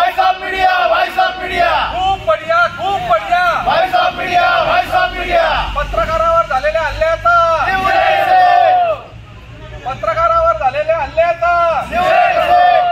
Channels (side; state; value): both; identical; correlation 1.00